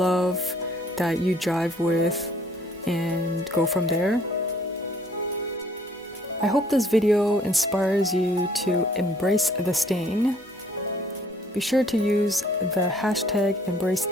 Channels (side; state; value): both; normal; correlation 0.60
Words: that you drive with, and go from there. I hope this video inspires you to embrace the stain. Be sure to use the hashtag